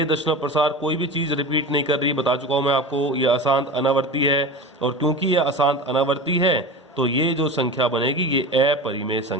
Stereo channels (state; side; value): normal; both; correlation 0.30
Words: दशमलव प्रसार कोई भी चीज़ रिपीट नहीं कर रही, बता चुका हूँ मैं आपको, ये अशांत अनावर्ती है। और क्योंकि ये अशांत अनावर्ती है तो ये जो संख्या बनेगी ये अपरिमेय